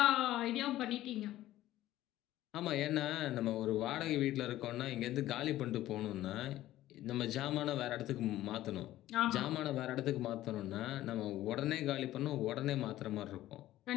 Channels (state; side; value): quieter; right; 14.6 dB